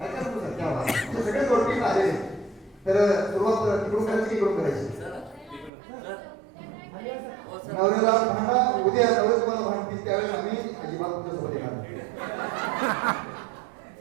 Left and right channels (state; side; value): drops out; left; at 5.7 s